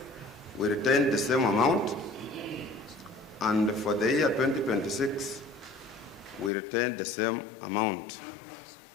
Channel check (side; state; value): right; drops out; at 6.5 s